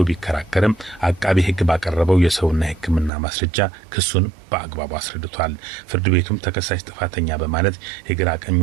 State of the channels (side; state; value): left; drops out; at 3.1 s